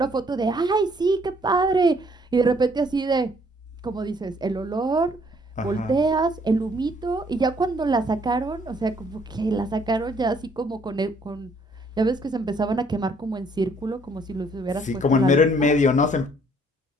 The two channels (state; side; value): normal; both; correlation 0.64